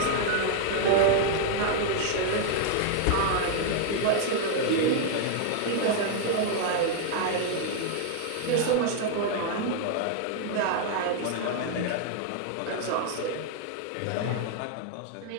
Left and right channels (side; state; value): both; different; correlation 0.00